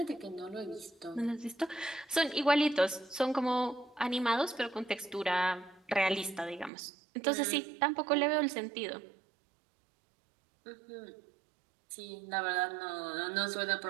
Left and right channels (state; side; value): drops out; left; at 6.7 s